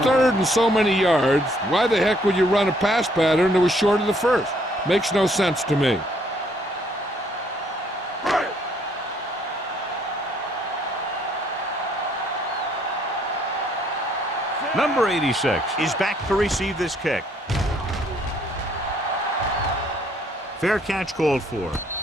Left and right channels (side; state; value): both; normal; correlation 0.66